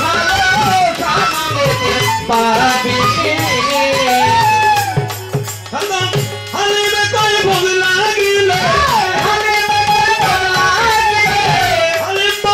ভালো সামনেতে পাবি হালিমে কই ভোগ লাগিলে হালিম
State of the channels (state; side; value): identical; both; correlation 1.00